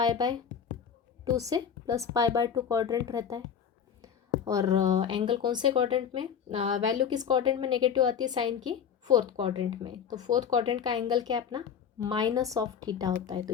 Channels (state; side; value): quieter; right; 7.7 dB